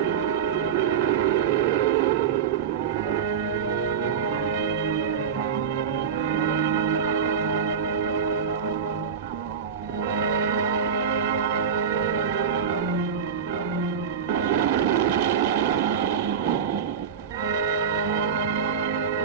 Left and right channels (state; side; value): quieter; left; 7.2 dB